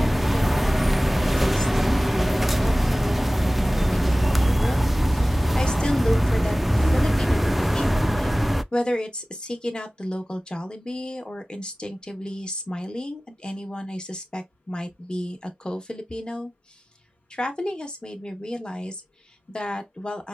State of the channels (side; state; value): both; normal; correlation 0.97